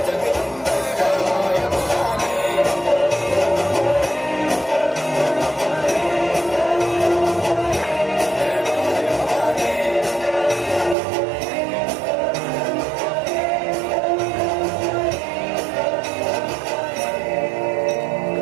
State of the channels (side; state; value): left; drops out; at 11.0 s